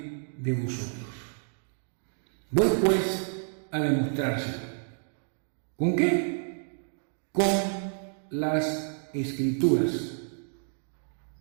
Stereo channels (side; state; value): left; silent; digital silence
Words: de vosotros. Voy pues a demostrárselo. ¿Con qué? Con las escrituras